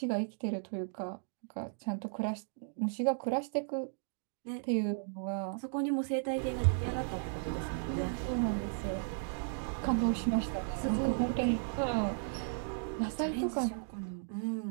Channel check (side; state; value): left; silent; digital silence